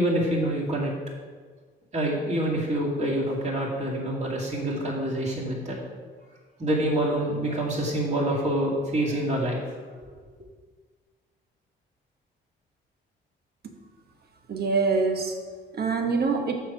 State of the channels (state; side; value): normal; both; correlation 0.39